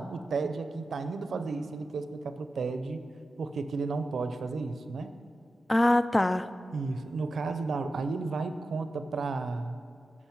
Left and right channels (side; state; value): both; normal; correlation 0.92